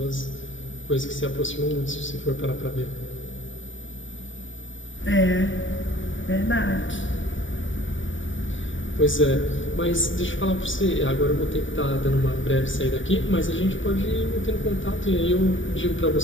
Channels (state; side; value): late; right; 0.56 ms